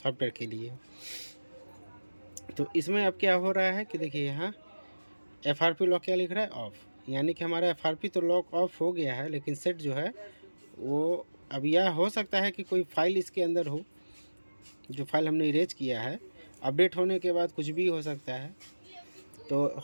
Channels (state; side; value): inverted; both; correlation -1.00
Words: के लिए। तो इसमें अब क्या हो रहा है कि देखिए यहाँ एफआरपी लॉक क्या लिख रहा है, ऑफ, यानी कि हमारा एफआरपी तो लॉक ऑफ हो गया है, लेकिन सेट जो है वो अब यह हो सकता है कि कोई फाइल इसके अंदर हो, जो फाइल हमने इरेज किया है, अपडेट होने के बाद कुछ भी हो सकता है। तो